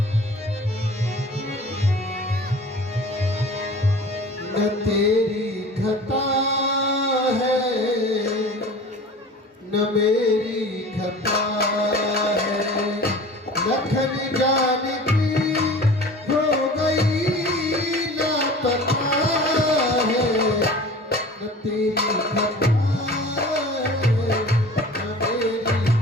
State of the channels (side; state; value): both; normal; correlation 0.41